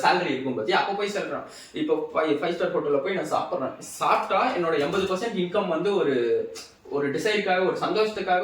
சேலரி இருக்கும் பத்தி அப்போ போய் சொல்றான். இப்போ 5 star ஹோட்டல்ல போய் நான் சாப்பிட்டா என்னோட 80% இன்கம் வந்து ஒரு டிசைருக்காக ஒரு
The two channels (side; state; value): both; identical; correlation 1.00